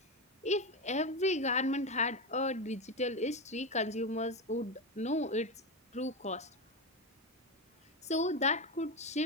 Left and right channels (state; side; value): normal; both; correlation 0.15